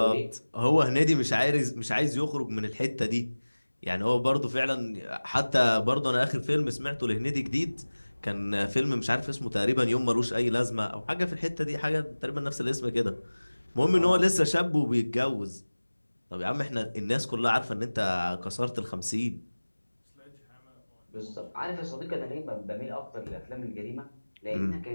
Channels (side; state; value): both; inverted; correlation -1.00